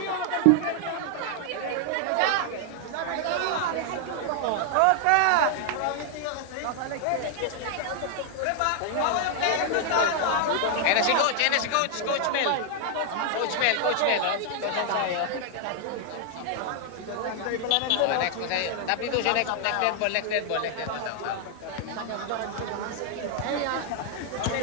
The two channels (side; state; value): both; different; correlation 0.00